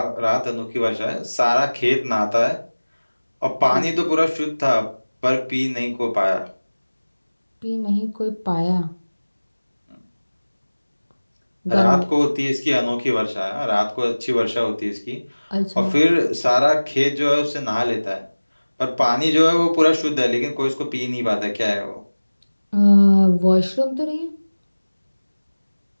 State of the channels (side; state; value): both; inverted; correlation -1.00